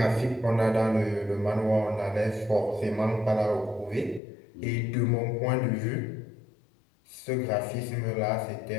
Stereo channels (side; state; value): right; drops out; at 4.2 s